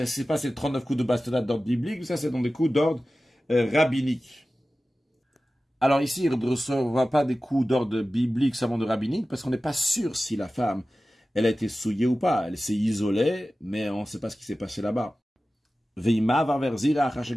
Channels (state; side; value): normal; both; correlation 0.95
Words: c'est pas ces 39 coups de bastonnade d'ordre biblique, ça c'est dans des coups d'ordre rabbinique. Alors ici, il ne recevra pas des coups d'ordre biblique, seulement de rabbinique, parce qu'on n'est pas sûr si la femme elle a été souillée ou pas. Elle s'est isolée, mais on ne sait pas ce qui s'est passé là-bas. Veima va vers Zira